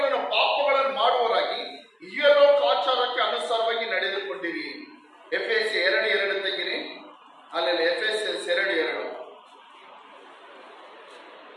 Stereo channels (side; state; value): both; identical; correlation 1.00